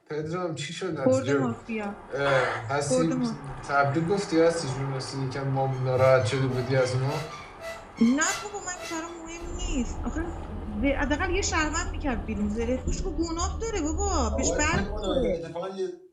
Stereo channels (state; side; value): identical; both; correlation 1.00